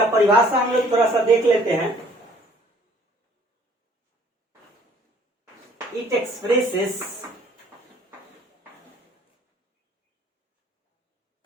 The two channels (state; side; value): normal; both; correlation 0.57